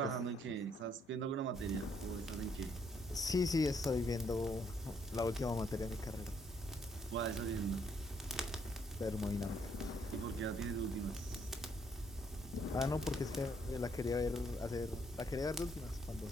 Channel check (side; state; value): both; normal; correlation 0.70